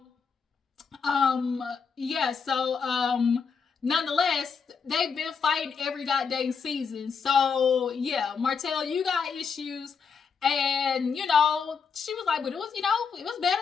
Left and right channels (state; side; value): quieter; right; 5.9 dB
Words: nonetheless, they've been fighting every goddamn season. So yeah, Martell, you got issues. And, she was like, but it was, it was better